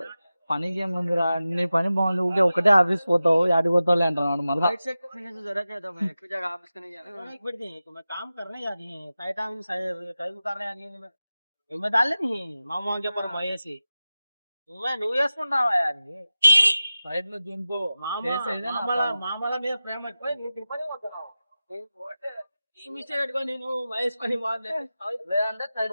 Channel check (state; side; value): inverted; both; correlation -0.95